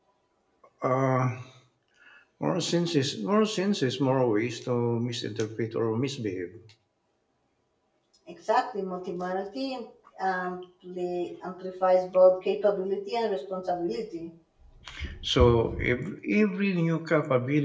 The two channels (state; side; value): identical; both; correlation 1.00